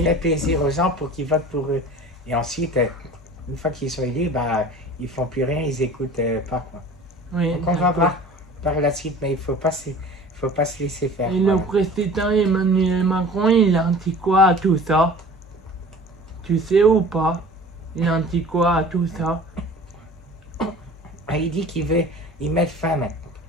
Faire plaisir aux gens pour qu'ils votent pour eux. Et ensuite, une fois qu'ils sont élus, ils font plus rien, ils écoutent pas. Quoi. oui. Donc on va d'accord. voir par la suite, mais il faut pas se laisser faire. Et le président Emmanuel Macron, il a dit quoi à tout ça? Tu sais ou pas? Il a dit quoi à tout ça? Il dit qu'il veut y mettre fin.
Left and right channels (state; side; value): normal; both; correlation 0.42